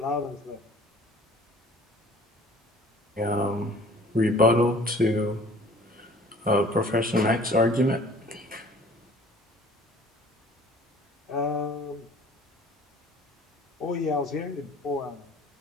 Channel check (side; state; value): both; normal; correlation 0.50